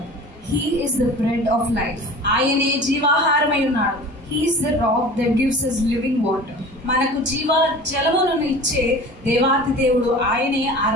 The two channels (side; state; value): both; normal; correlation 0.39